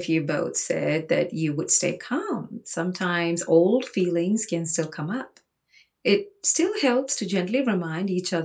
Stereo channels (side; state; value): both; identical; correlation 1.00